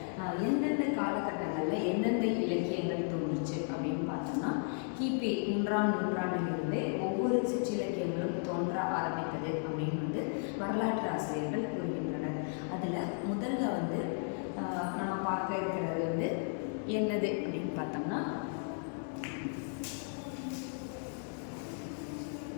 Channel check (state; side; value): silent; right; 55 dB below the other